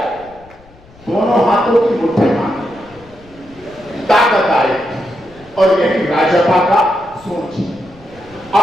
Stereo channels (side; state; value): left; noise; rumble, 25 dB below the sound